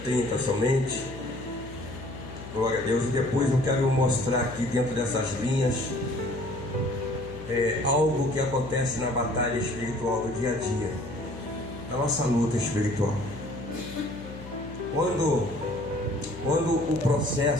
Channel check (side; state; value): left; noise; hum, 13 dB below the sound